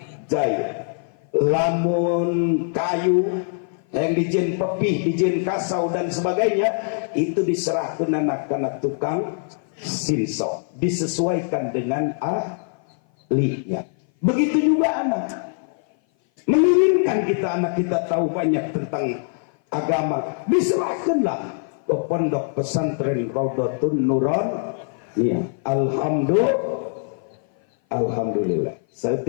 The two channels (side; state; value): right; silent; 56 dB below the other